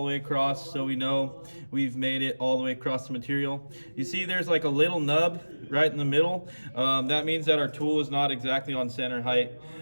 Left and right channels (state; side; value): inverted; both; correlation -1.00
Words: the way across, so we know we've made it all the way across the material. You see there's like a little nub right in the middle. That means that our tool is not exactly on center height,